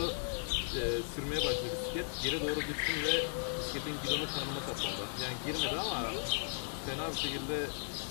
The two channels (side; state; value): right; silent; digital silence